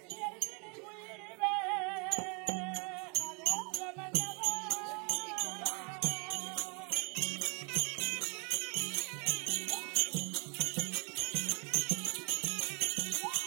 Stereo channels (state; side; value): quieter; left; 34.5 dB